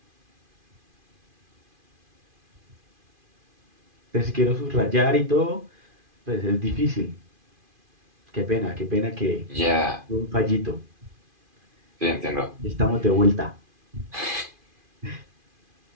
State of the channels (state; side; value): late; left; 2.5 ms